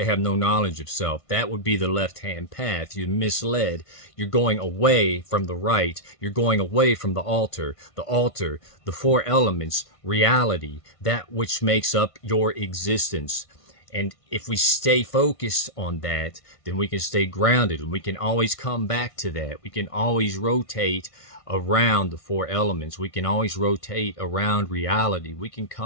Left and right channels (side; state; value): right; late; 1.5 ms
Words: have no knowledge of self. That would be the left-hand path. You're misled. You're going away from the right. You're going away from the altar, the four elements, reality, that which makes up your existence. And if we stay focused on that, then we can stay grounded, and we can always come back to that. We can always rotate around the four elements. We can always rotate around reality. We can